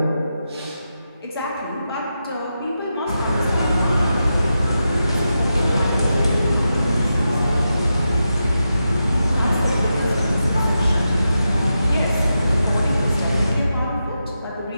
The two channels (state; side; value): inverted; both; correlation -0.88